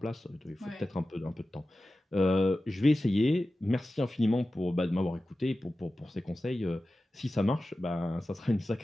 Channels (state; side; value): normal; both; correlation 0.94